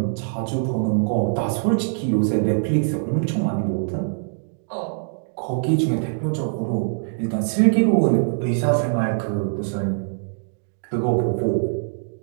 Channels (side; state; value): left; silent; digital silence